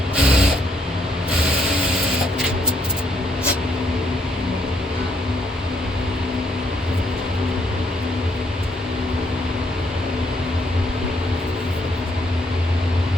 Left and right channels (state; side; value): normal; both; correlation 0.72